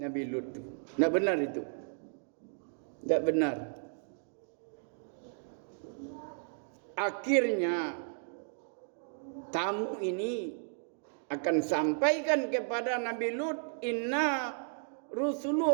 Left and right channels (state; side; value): silent; left; digital silence